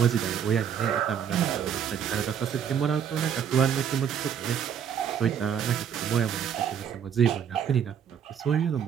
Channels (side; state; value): left; quieter; 8.2 dB